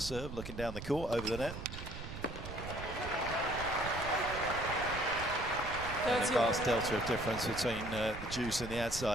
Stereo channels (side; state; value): right; noise; rumble, 9 dB below the sound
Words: looking down the court over the net. And a vast delta of difference between the juice and the ad